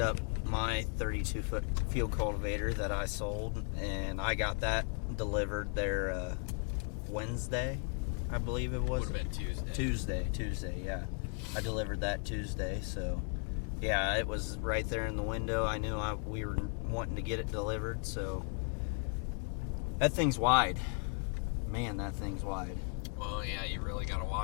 my 32-foot field cultivator that I sold, and I got that delivered there Wednesday, I believe it was. Would have been Tuesday. Tuesday, yeah. I delivered that Tuesday, so yeah, it was right there in the window. I knew we were wanting to get it delivered, so that thing's wide. Man, that thing's wide. Well, yeah, you really got to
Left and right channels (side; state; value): right; quieter; 36.8 dB